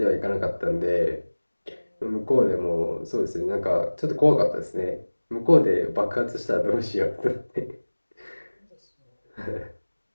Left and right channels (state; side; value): inverted; both; correlation -1.00